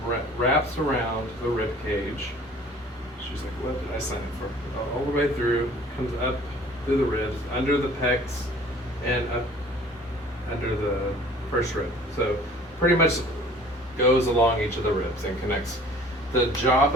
wraps around the rib cage. She's like, what did I sign up for? All the way through, comes up through the ribs, under the pecs, and up under the first rib. So pretty much goes along each of the ribs and connects. The job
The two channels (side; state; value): both; normal; correlation 0.50